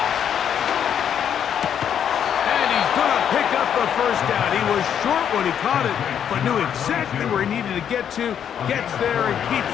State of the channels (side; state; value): right; quieter; 8.8 dB